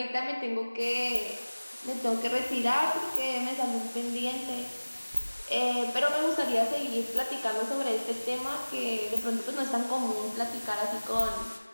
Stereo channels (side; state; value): both; inverted; correlation -1.00